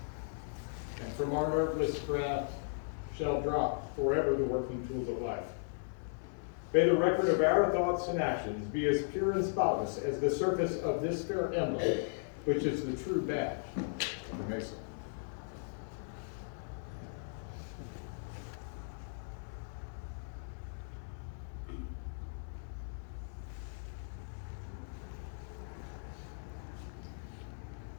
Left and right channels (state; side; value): silent; right; 53 dB below the other